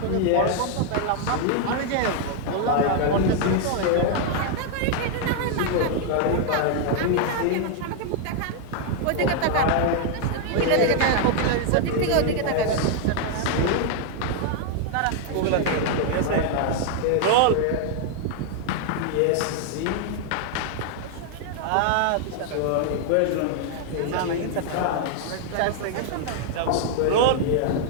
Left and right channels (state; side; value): different; both; correlation 0.00